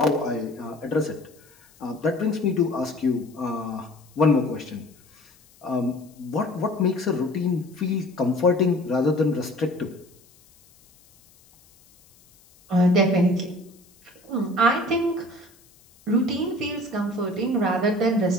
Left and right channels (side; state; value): left; noise; hiss, 29 dB below the sound